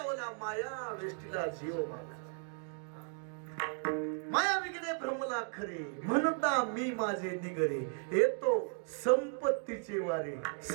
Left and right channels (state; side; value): silent; left; 54 dB below the other